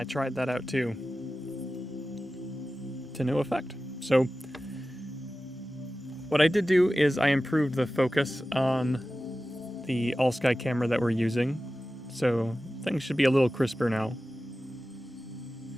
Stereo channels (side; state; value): both; normal; correlation 0.95